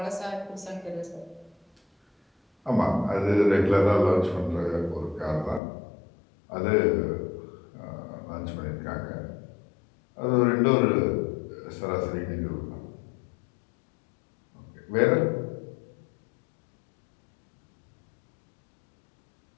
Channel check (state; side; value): drops out; right; at 5.6 s